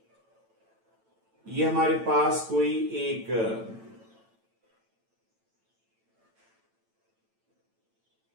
ये हमारे पास कोई एक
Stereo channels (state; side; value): late; left; 9.0 ms